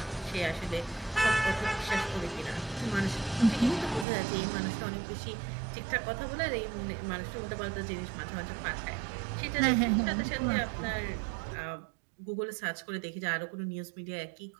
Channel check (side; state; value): left; drops out; at 4.0 s